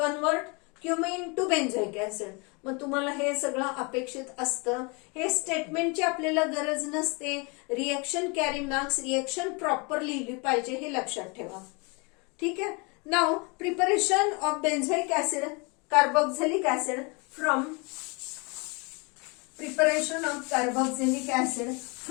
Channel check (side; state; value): right; quieter; 30.5 dB